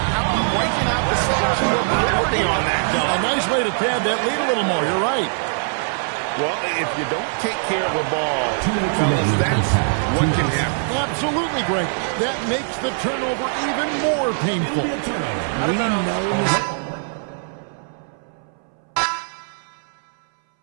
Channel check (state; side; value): silent; left; 63 dB below the other